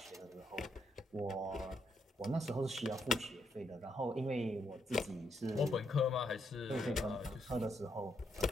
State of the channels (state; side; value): normal; both; correlation 0.77